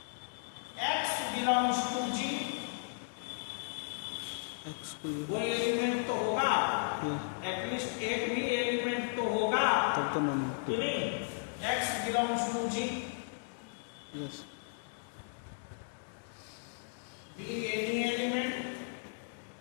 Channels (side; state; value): right; silent; digital silence